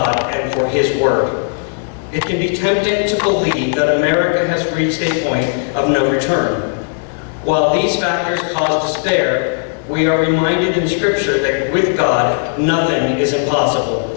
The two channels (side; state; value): right; silent; 63 dB below the other